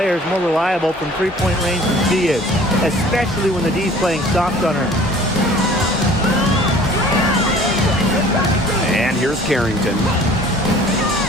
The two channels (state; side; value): normal; both; correlation 0.49